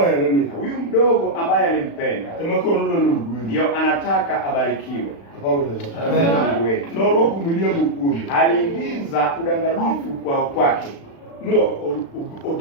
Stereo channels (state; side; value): late; right; 36 ms